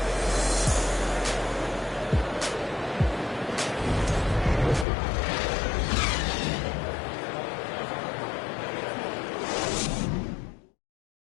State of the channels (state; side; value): drops out; right; at 4.9 s